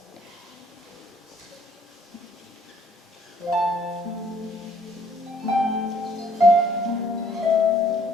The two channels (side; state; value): both; normal; correlation 0.62